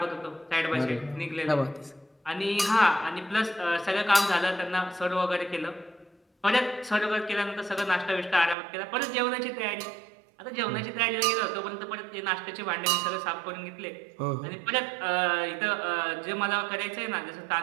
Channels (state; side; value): drops out; left; at 8.6 s